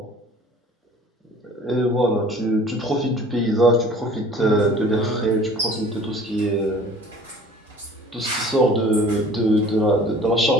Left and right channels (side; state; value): both; normal; correlation 0.48